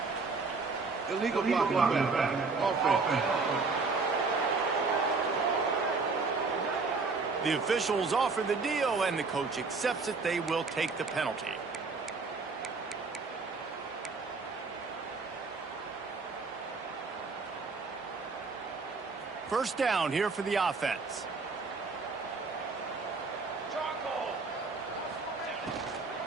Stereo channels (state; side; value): quieter; left; 4.2 dB